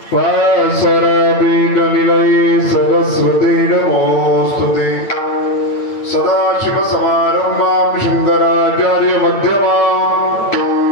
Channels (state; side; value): late; right; 9.0 ms